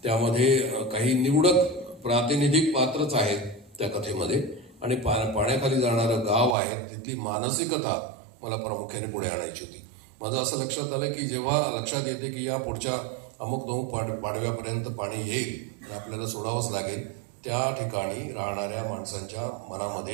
त्यामध्ये काही निवडक प्रातिनिधिक पात्रच आहेत त्या कथेमध्ये, आणि पाण्याखाली जाणारं गाव आहे, तिथली मानसिकता मला प्रामुख्याने पुढे आणायची होती. माझं असं लक्षात आलं की जेव्हा लक्षात येते की या पुढच्या अमुक पाडव्यापर्यंत पाणी येईल, आपल्याला सोडावंच लागेल, त्या ठिकाणी राहणाऱ्या माणसांच्या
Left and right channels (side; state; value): left; drops out; at 6.6 s